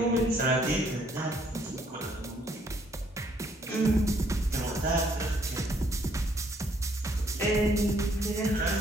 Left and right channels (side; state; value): both; normal; correlation 0.67